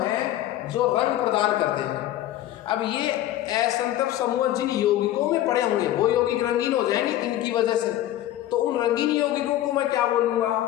जो रंग प्रदान करते हैं। अब ये असंतृप्त समूह जिन यौगिकों में पड़े होंगे वो यौगिक रंगीन हो जाएंगे इनकी वजह से, तो उन रंगीन यौगिकों को मैं क्या बोलूंगा,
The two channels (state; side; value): quieter; right; 13.5 dB